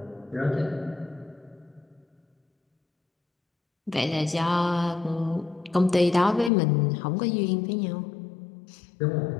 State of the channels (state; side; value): drops out; right; at 6.5 s